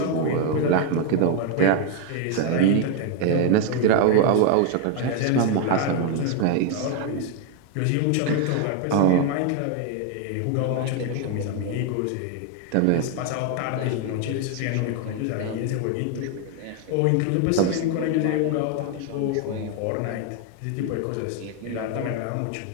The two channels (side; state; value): both; different; correlation 0.01